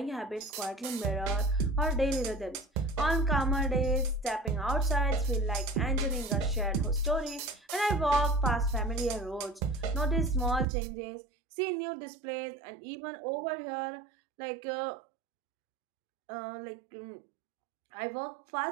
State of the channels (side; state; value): left; drops out; at 10.7 s